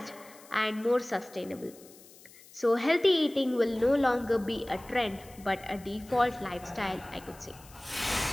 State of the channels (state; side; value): noise; left; hiss, 22 dB below the sound